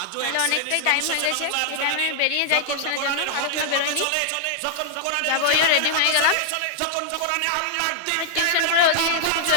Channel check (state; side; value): different; both; correlation -0.01